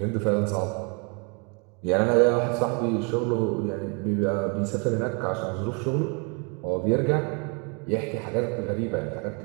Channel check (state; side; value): quieter; left; 34.8 dB